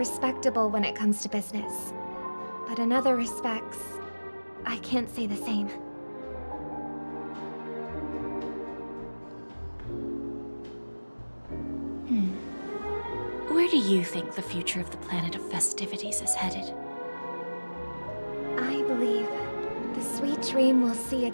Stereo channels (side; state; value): both; inverted; correlation -1.00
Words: when it comes to business, but in other respects, I can't say the same. Where do you think the future of the planet of festivities is headed? I believe the sweet dream will see